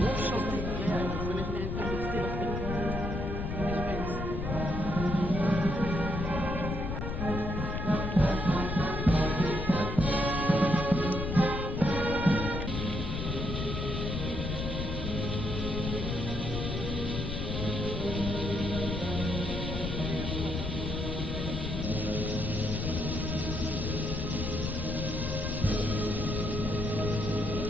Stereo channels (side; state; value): left; noise; rumble, 3 dB below the sound